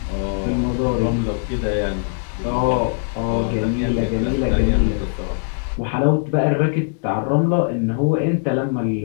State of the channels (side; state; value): right; silent; digital silence